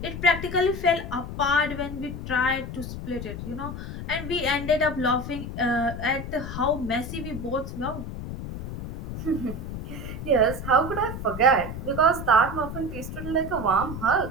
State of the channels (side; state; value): left; noise; rumble, 7 dB below the sound